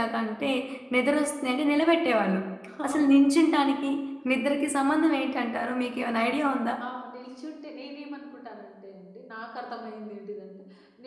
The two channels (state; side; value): identical; both; correlation 1.00